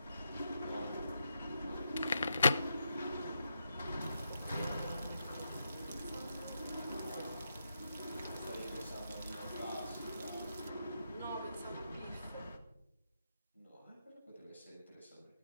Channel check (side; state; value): both; inverted; correlation -0.83